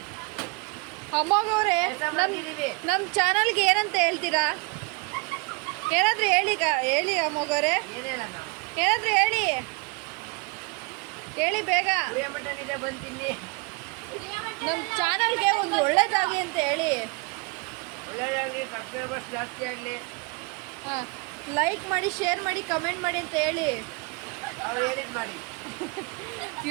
ಅಮ್ಮಗವ್ರೆ ನಮ್ಮ ಚಾನಲ್ಗೆ ಏನಂತ ಹೇಳ್ತೀರಾ? ಏನಾದರೂ ಹೇಳಿ ಅಮ್ಮಗವ್ರೆ, ಏನಾದರೂ ಹೇಳಿ ಬೇಗ. ನಮ್ಮ ಚಾನಲ್ಗೆ ಒಂದು ಒಳ್ಳೇದಾಗಿ ಅಂತ ಹೇಳಿ. ಸಬ್ಸ್ಕ್ರೈಬರ್ಸ್ ಜಾಸ್ತಿ ಆಗಲಿ. ಹಾಂ, ಲೈಕ್ ಮಾಡಿ, ಶೇರ್ ಮಾಡಿ, ಕಮೆಂಟ್ ಮಾಡಿ ಅಂತ ಹೇಳಿ. ಮಾಡಿ.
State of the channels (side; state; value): left; quieter; 29.0 dB